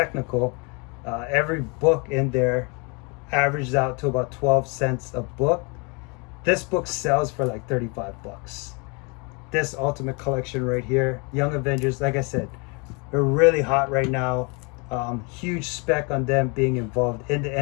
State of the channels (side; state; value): right; quieter; 31.9 dB